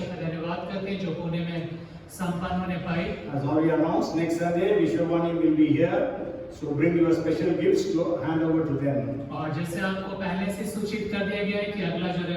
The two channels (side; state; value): both; identical; correlation 1.00